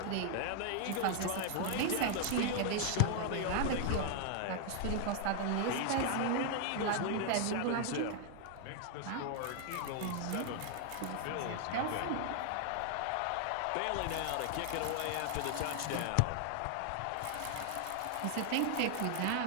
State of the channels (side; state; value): both; different; correlation 0.00